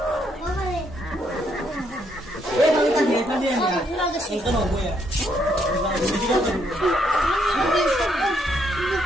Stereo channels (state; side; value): normal; both; correlation 0.73